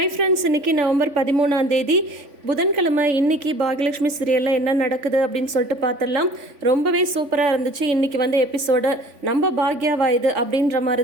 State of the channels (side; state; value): left; late; 3.5 ms